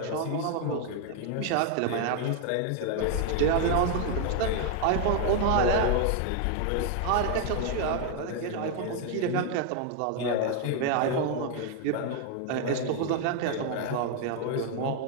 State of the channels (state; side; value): different; both; correlation 0.00